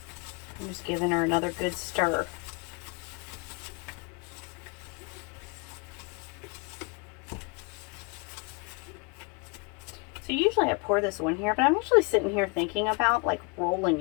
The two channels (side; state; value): right; quieter; 31.5 dB